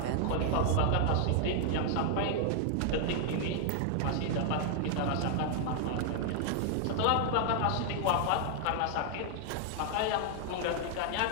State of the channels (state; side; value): different; both; correlation 0.00